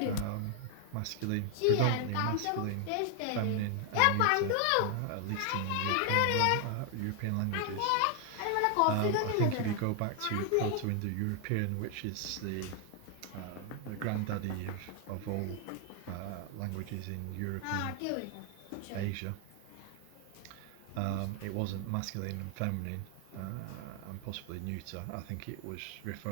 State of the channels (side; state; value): both; different; correlation 0.00